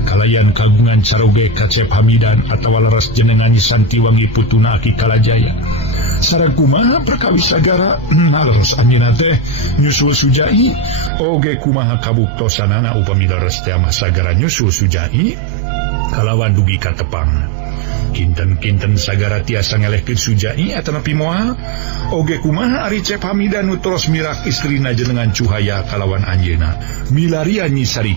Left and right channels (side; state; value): left; drops out; at 11.1 s